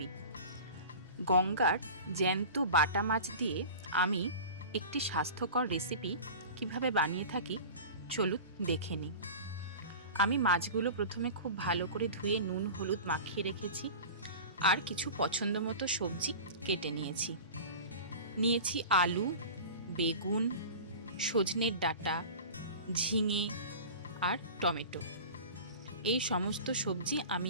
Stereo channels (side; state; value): both; inverted; correlation -0.35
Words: গঙ্গার জ্যান্ত বাটা মাছ দিয়ে আমি একটি স্বাস্থ্যকর রেসিপি কিভাবে বানিয়ে থাকি চলুন দেখে নিই। আমি মাছগুলো প্রথমে খুব ভালো করে ধুয়ে নুন হলুদ মাখিয়ে রেখেছি, আর কিছু পছন্দ মতো সবজি কেটে নিয়েছি আলু, বেগুন, সজনের ডাঁটা, ঝিঙে আর টমেটো। এই সমস্ত সবজি